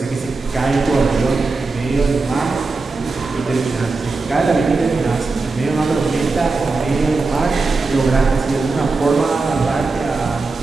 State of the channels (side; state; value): left; quieter; 3.9 dB